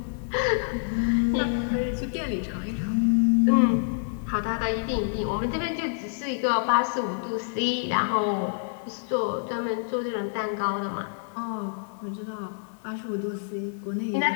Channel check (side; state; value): right; silent; 60 dB below the other